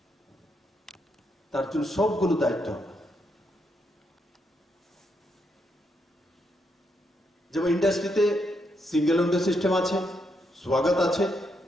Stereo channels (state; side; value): normal; both; correlation 0.79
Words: তার জন্য সবগুলো দায়িত্ব হবে। যেমন ইন্ডাস্ট্রিতে সিঙ্গেল উইন্ডো সিস্টেম আছে, স্বাগত আছে,